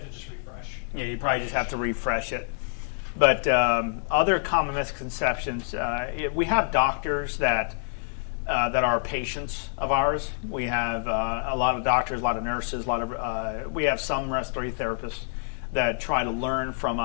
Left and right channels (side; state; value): right; silent; 60 dB below the other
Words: just refresh. Yeah, you probably just have to refresh it. But other common misconceptions, we have doctors that are patients of ours. We have a lot of doctors, a lot of nurses, we have some respiratory therapists that try to learn from